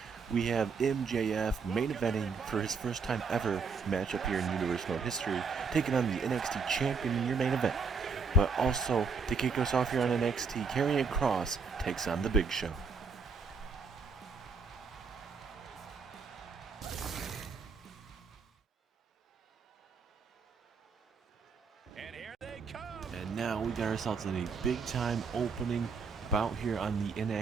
we have MJF main eventing for his first time ever matchup here in Universe Mode history, taking on the NXT Champion in your main event. But also, to kick us off here on NXT, Karrion Kross takes on the Big Show. And now we got ourselves in a big-time opening bout here on the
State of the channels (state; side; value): quieter; left; 5.0 dB